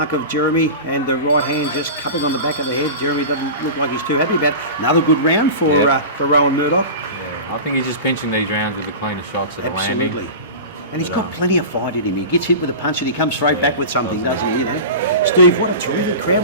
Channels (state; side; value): inverted; both; correlation -0.30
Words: of Jeremy, and the right hand just cupping on the back of the head. Jeremy doesn't look like he's too happy about it. Another good round for Rowan Murdoch. Yeah, I think he's just pinching these rounds with the cleaner shots that are landing. Absolutely. And he's got plenty of fight in him. He gets hit with a punch and he comes straight back with something, doesn't he? You know, Steve, what a terrific